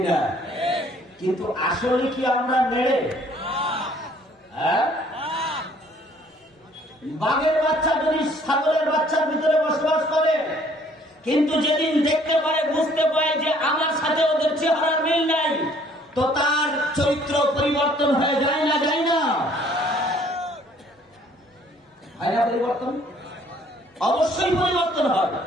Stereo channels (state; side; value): normal; both; correlation 0.59